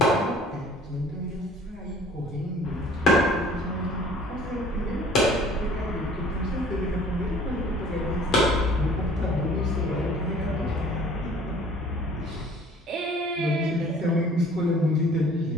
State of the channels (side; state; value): both; normal; correlation 0.51